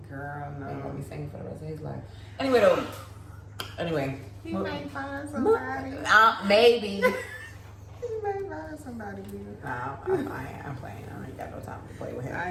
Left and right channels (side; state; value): both; identical; correlation 1.00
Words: Girl, He gonna no. be singing for the rest of his life. Anyway. He may find somebody. Maybe. He may find somebody good. No, I'm playing. I ain't got no time to play with him.